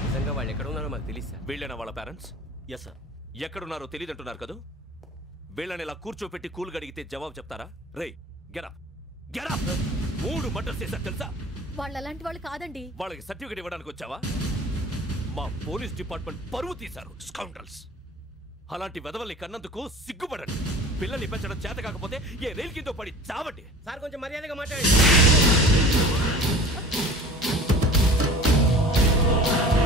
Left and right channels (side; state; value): both; normal; correlation 0.42